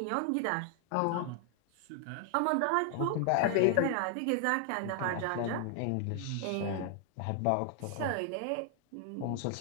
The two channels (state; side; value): different; both; correlation 0.00